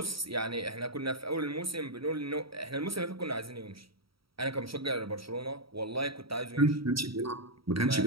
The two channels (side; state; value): left; late; 0.75 ms